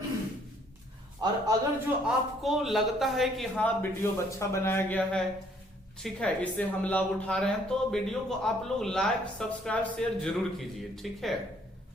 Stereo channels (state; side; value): normal; both; correlation 0.64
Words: अगर जो आपको लगता है कि हाँ वीडियो अच्छा बनाया गया है, ठीक है, इससे हम लाभ उठा रहे हैं, तो वीडियो को आप लोग लाइक सब्सक्राइब शेयर जरूर कीजिए, ठीक है।